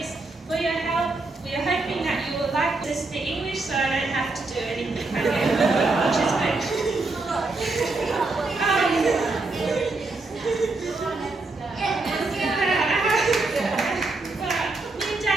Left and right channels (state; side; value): quieter; left; 3.3 dB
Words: for your help. We are hoping that you will like this the English, so I don't have to do anything again, which is good.